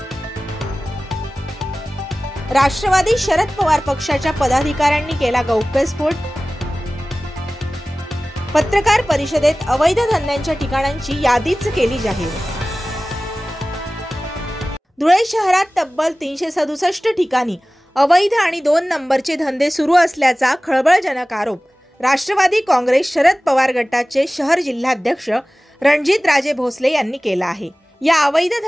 राष्ट्रवादी शरद पवार पक्षाच्या पदाधिकाऱ्यांनी केला गौप्यस्फोट। पत्रकार परिषदेत अवैध धंद्यांच्या ठिकाणांची यादीच केली जाहीर। धुळे शहरात तब्बल 367 ठिकाणी अवैध आणि 2 नंबरचे धंदे सुरू असल्याचा खळबळजनक आरोप राष्ट्रवादी काँग्रेस शरद पवार गटाचे शहर जिल्हाध्यक्ष रणजितराजे भोसले यांनी केला आहे। या अवैध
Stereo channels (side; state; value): both; normal; correlation 0.97